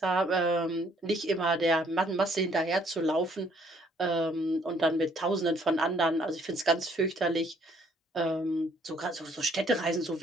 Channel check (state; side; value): normal; both; correlation 0.64